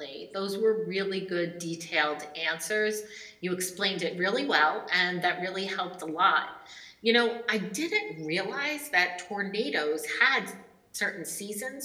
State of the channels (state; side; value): identical; both; correlation 1.00